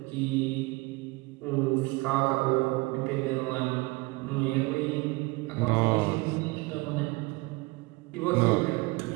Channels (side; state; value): left; quieter; 24.1 dB